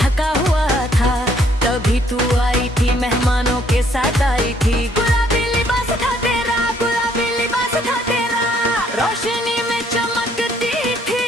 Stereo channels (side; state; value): both; normal; correlation 0.66